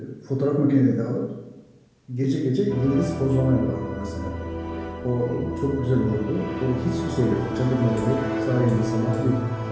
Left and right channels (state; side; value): identical; both; correlation 1.00